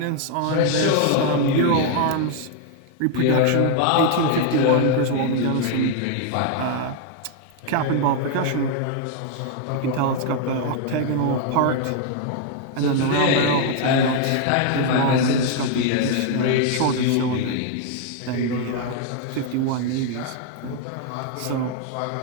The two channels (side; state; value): both; different; correlation 0.00